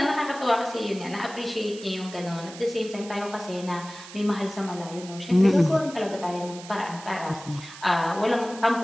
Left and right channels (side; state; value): right; noise; hiss, 16 dB below the sound